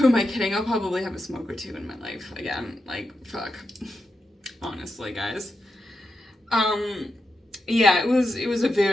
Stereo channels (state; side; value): normal; both; correlation 0.87